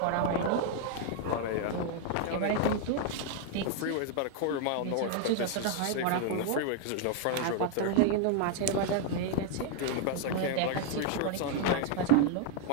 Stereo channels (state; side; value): different; both; correlation 0.00